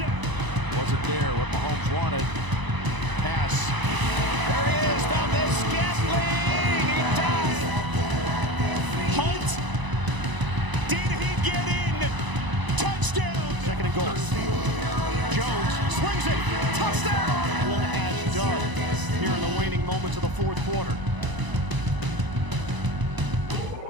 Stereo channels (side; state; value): left; late; 1.0 ms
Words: Wasn't there what Mahomes wanted. Pass. There he is. Valdez Scantling. He dies. Hunt. Did he get in? Touchdown. 2nd and goal. Jones swings it. Touchdown. One as done here in the waning moments of the 4th quarter.